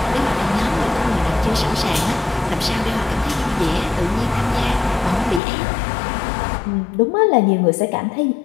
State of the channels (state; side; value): drops out; right; at 5.4 s